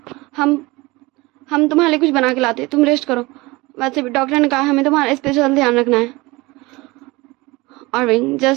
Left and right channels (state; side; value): quieter; left; 22.6 dB